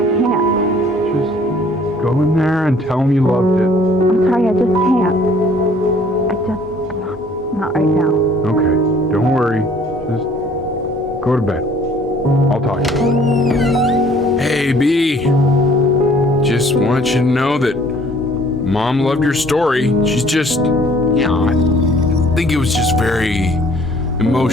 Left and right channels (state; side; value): normal; both; correlation 0.56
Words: Can't. Just go in there and tell him you loved it. I'm sorry, I just can't. Not right now. Okay, don't worry. Just go to bed. I'll talk to you. Hey, B. Just want you to know that Mom loved your story. She's just, I think it was just very